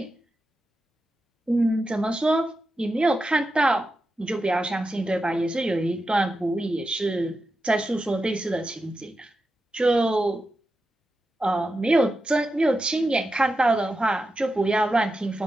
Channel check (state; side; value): normal; both; correlation 0.90